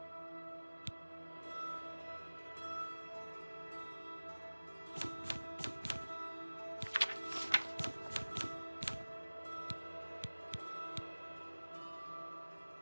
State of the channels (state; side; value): inverted; both; correlation -1.00